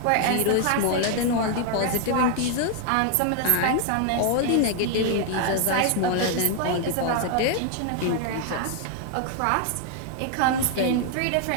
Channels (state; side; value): different; both; correlation 0.00